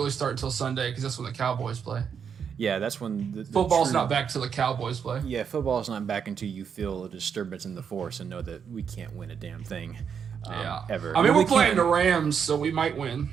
start until Sunday because that's when the Cowboys play. Yeah, that's when the football's not back till the Cowboys play. Yeah, football's not back until you feel a disturbance in the force and know that we can't win a damn thing. Ever. I mean, we're playing the Rams, so we might win.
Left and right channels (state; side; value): quieter; left; 7.2 dB